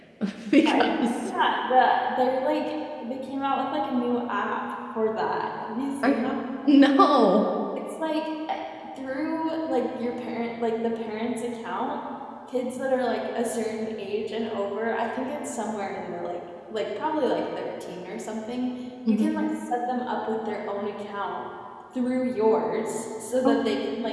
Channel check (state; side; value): identical; both; correlation 1.00